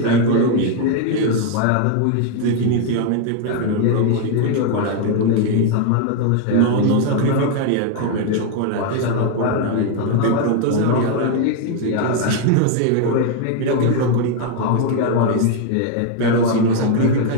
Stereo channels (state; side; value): different; both; correlation 0.00